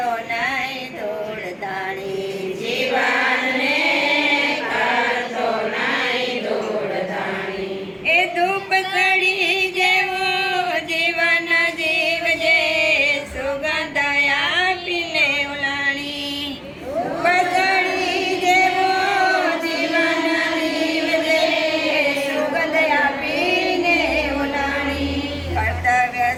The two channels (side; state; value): both; identical; correlation 1.00